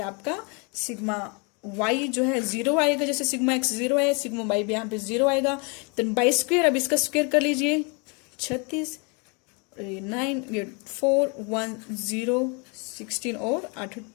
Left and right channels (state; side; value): quieter; right; 32.8 dB